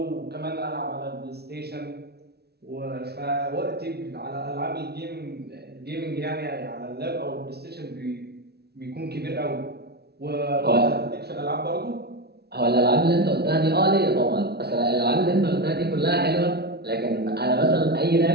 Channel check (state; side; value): late; left; 0.47 ms